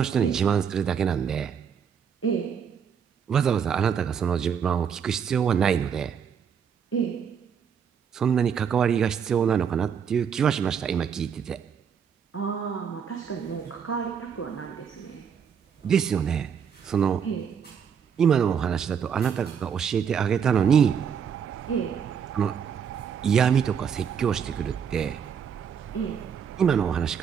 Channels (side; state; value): left; quieter; 7.4 dB